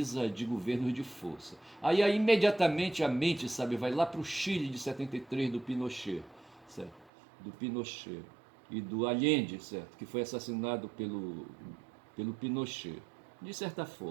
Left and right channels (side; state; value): left; drops out; at 7.1 s